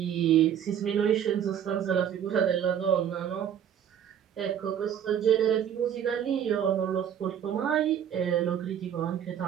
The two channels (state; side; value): quieter; left; 9.2 dB